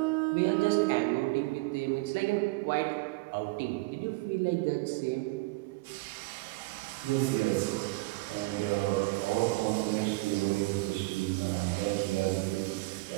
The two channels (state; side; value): quieter; left; 23.2 dB